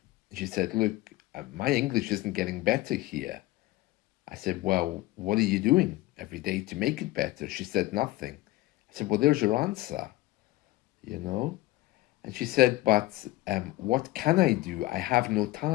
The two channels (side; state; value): right; quieter; 17.7 dB